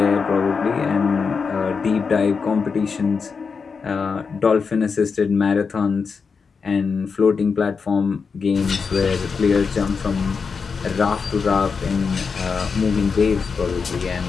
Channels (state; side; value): quieter; right; 5.4 dB